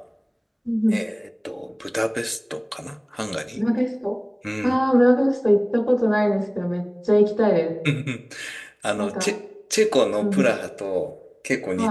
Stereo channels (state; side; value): identical; both; correlation 1.00